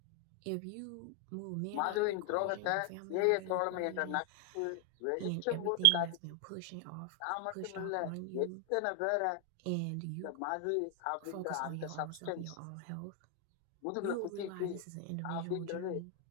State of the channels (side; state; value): both; different; correlation 0.00